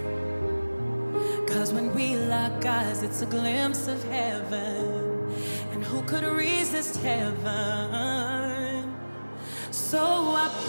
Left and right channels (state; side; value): inverted; both; correlation -1.00